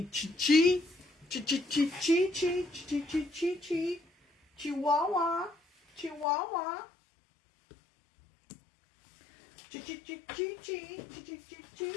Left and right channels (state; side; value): drops out; right; at 6.2 s